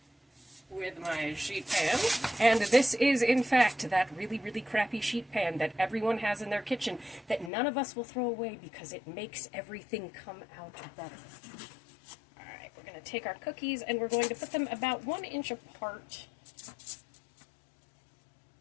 with my sheet pan, and this is in fact that really crappy sheet pan that everyone has in their kitchen that none of us will throw away because it makes everything come out better. Alright, we're going to take our cookies and we're going to put them about 1 inch apart.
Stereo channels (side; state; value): right; drops out; at 7.5 s